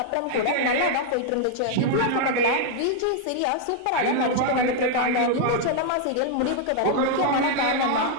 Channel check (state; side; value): different; both; correlation 0.00